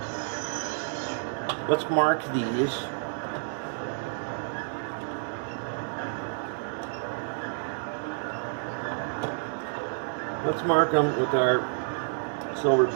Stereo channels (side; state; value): left; silent; digital silence